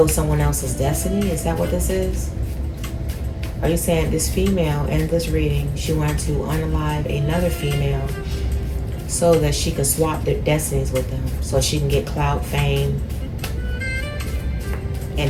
someone else's destiny? Is that what this is? Are you saying this female in this reading, she wanted to unalive another female so that she could swap their destinies with them, so she can get clout, fame,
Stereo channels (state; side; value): identical; both; correlation 1.00